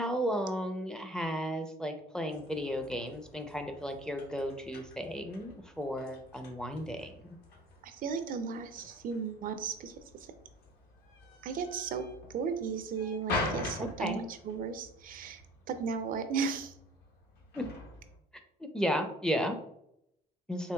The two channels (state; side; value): normal; both; correlation 0.50